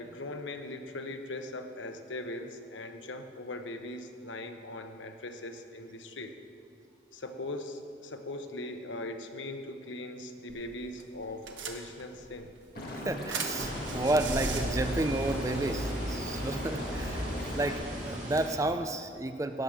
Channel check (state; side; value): normal; both; correlation 0.55